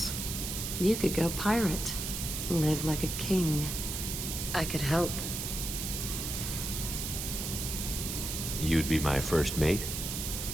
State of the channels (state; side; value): noise; right; hiss, 4 dB below the sound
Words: You could go pirate. Live like a king. I could help. You'd be my first mate?